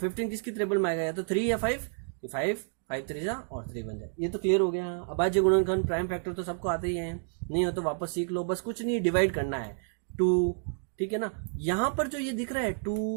किसकी ट्रिपल में आएगा? या तो 3 या 5, तो 5 3 और 3 बन जाए। ये तो क्लियर हो गया। अभाज्य गुणनखंड प्राइम फैक्टर तो सबको आते ही है, नहीं हो तो वापस सीख लो। बस कुछ नहीं, डिवाइड करना है 2, ठीक है ना। यहां पर जो ये दिख रहा है 2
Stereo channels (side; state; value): left; silent; 58 dB below the other